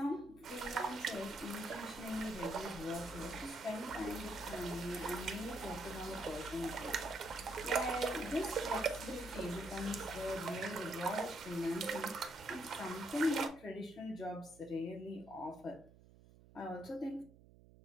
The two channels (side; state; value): right; noise; hum, 22 dB below the sound